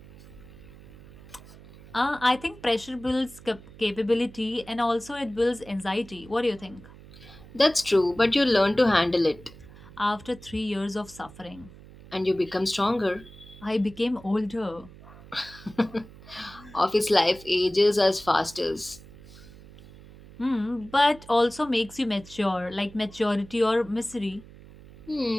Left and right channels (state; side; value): noise; right; hum, 20 dB below the sound